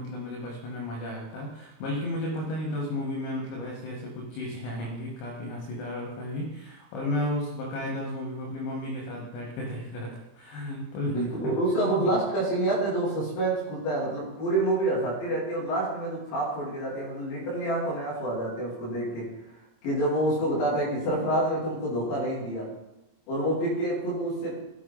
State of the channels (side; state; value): right; late; 26 ms